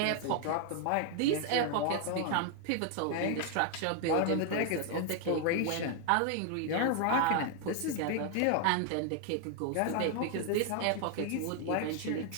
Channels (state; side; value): different; both; correlation 0.00